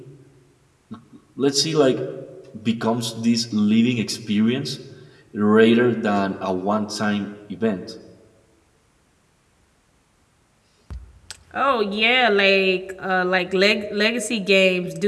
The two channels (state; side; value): identical; both; correlation 1.00